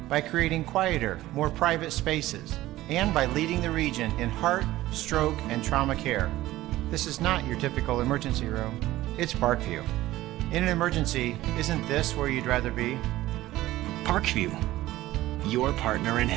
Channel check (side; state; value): left; quieter; 16.1 dB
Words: by creating quieter, more private spaces, and by leading the region in heart, stroke, and trauma care. This is not your typical emergency room. It's Parkview. In an emergency, isn't this where you'd rather be? Parkview, your partner in